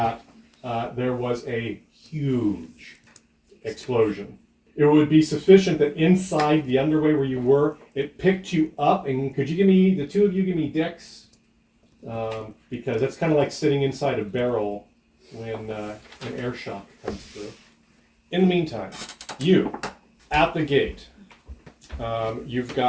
there was a huge explosion. It would be sufficient that inside the underway where you were, it picked you up. And could you give me, the two of you, give me Dex? Because that's kind of like sitting inside a barrel when an air shock comes through. In the meantime, you, at the gate, you've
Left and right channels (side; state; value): both; identical; correlation 1.00